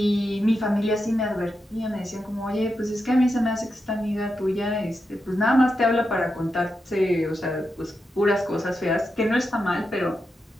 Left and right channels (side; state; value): both; normal; correlation 0.87